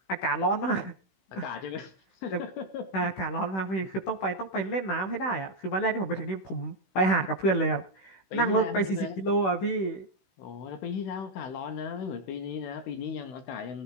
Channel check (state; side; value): late; right; 16 ms